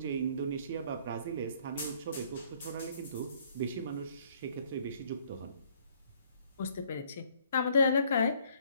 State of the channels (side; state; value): both; inverted; correlation -0.62